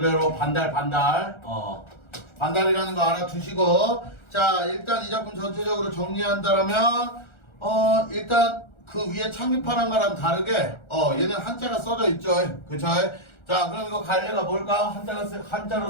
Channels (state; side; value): late; right; 1.4 ms